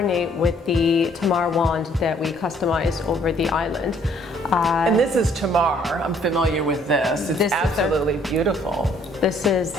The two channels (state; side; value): normal; both; correlation 0.62